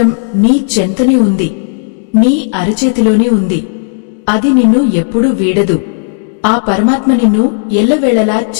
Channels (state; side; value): silent; right; digital silence